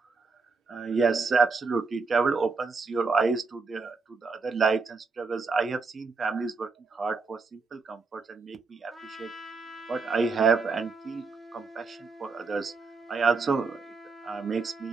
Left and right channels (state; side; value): quieter; left; 4.4 dB